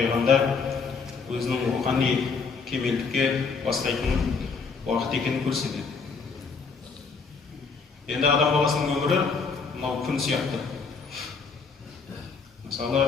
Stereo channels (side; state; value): right; quieter; 5.0 dB